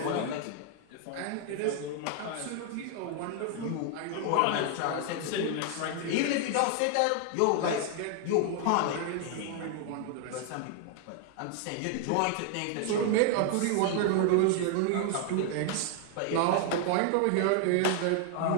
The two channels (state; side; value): different; both; correlation 0.00